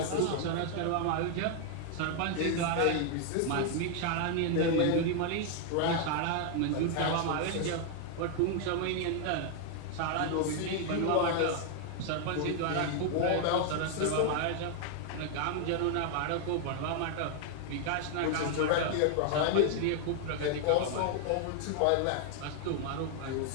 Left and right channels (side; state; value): both; different; correlation 0.00